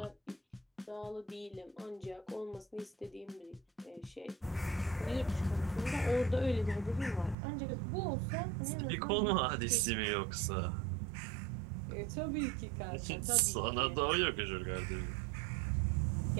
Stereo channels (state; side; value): drops out; left; at 7.4 s